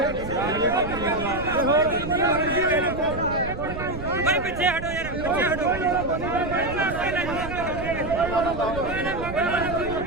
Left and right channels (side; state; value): right; noise; rumble, 9 dB below the sound